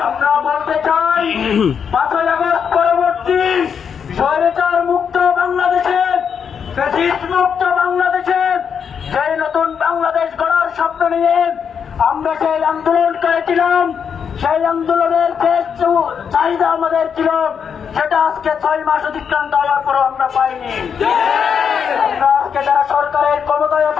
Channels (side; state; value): right; quieter; 7.1 dB